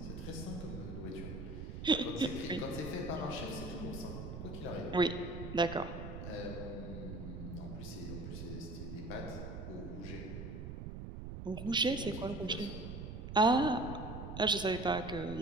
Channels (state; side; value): noise; right; rumble, 7 dB below the sound